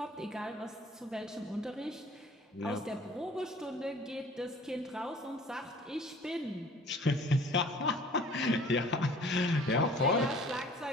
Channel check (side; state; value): both; normal; correlation 0.50